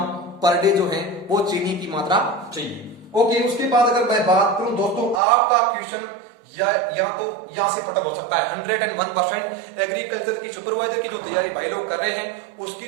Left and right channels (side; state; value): left; drops out; at 5.2 s